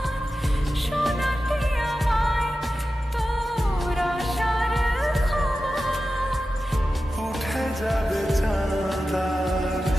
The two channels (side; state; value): both; normal; correlation 0.93